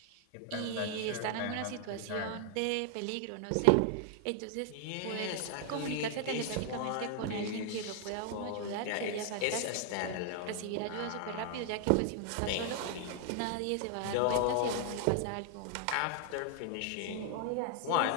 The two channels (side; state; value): both; different; correlation 0.00